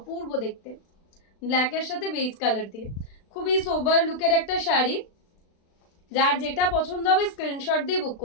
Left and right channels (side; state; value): right; late; 36 ms